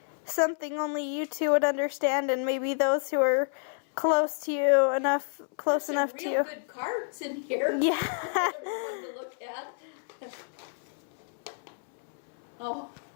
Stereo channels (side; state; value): right; silent; 58 dB below the other